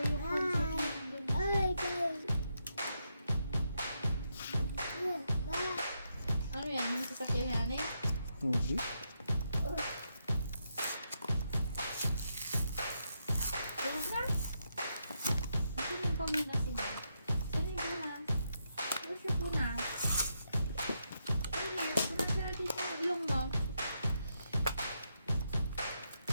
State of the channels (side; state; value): both; inverted; correlation -0.80